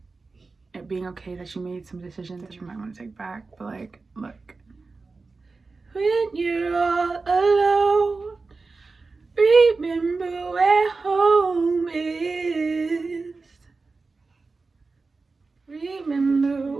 it being okay that you made some decisions that you might want to take back. But like, look, when you're all alone, remember where home is.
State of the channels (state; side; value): quieter; left; 4.0 dB